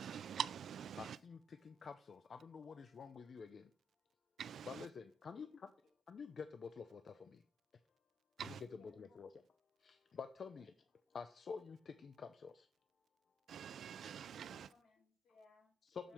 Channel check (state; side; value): normal; both; correlation 0.73